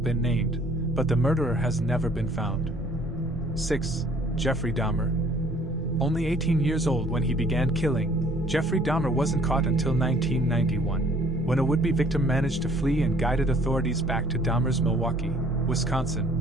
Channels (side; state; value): both; normal; correlation 0.58